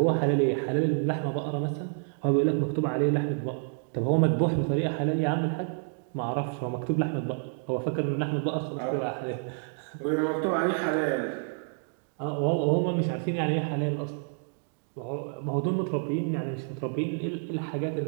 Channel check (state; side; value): silent; left; 59 dB below the other